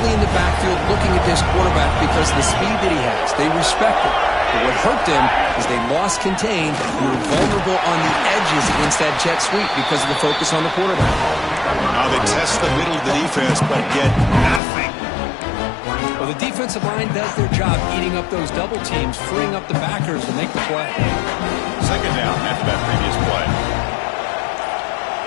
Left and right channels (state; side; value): drops out; right; at 14.6 s